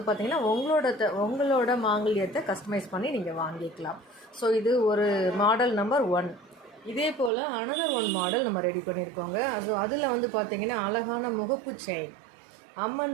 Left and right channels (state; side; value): drops out; left; at 7.3 s